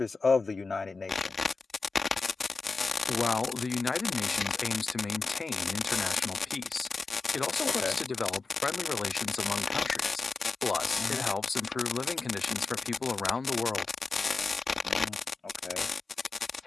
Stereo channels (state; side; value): quieter; right; 4.1 dB